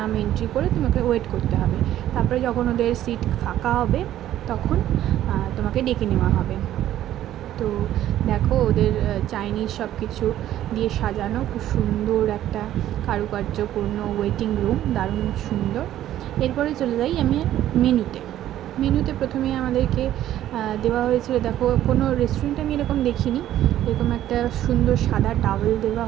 নাম এন্ট্রি করে তোমাকে ওয়েট করতে হবে। তারপরে যখন ওদের সিট ফাঁকা হবে তখন তোমাকে ডেকে নেওয়া হবে। তো দেখো ওদের চাইনিজ সব কিছু দিয়ে সাজানো, খুব সুন্দর একটা কারুকার্যপূর্ণ ওয়েটিং রুম, দারুণ সুন্দর। এরপরে চলে যাই আমি মেনুতে প্রথমেই আমাদেরকে দেওয়া হয়েছিল, দেখো কোনো রেস্টুরেন্টে আমি এরকম দেখিনি, এরকম একটা সুন্দর সাদা টাওয়েল দেওয়া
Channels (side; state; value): left; quieter; 12.6 dB